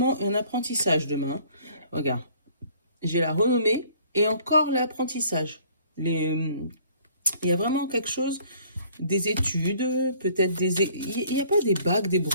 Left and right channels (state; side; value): inverted; both; correlation -0.57